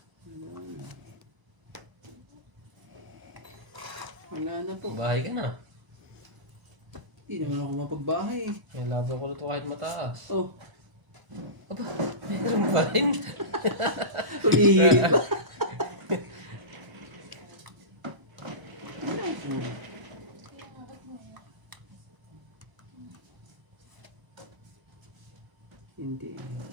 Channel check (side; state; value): left; late; 1.0 ms